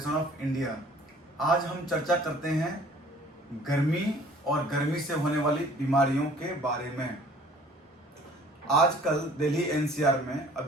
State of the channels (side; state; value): both; normal; correlation 0.53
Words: of India. आज हम चर्चा करते हैं गर्मी और गर्मी से होने वाली बीमारियों के बारे में। आजकल दिल्ली एनसीआर में